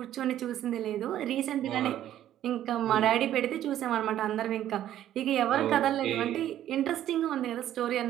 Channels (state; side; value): quieter; left; 12.0 dB